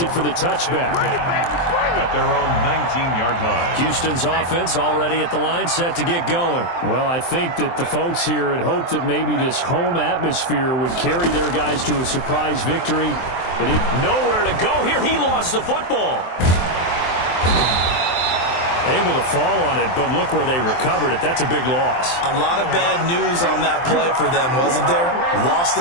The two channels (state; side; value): late; right; 23 ms